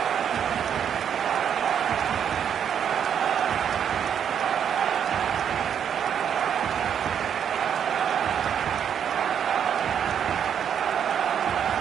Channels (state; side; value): quieter; left; 8.4 dB